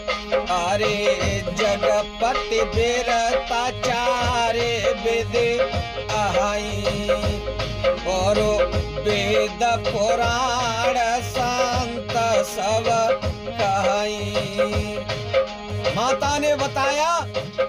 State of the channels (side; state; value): both; identical; correlation 1.00